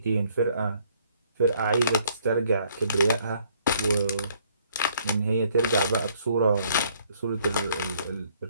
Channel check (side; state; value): both; inverted; correlation -0.64